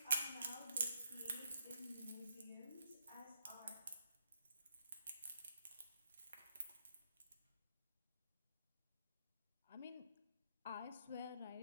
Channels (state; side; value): inverted; both; correlation -0.78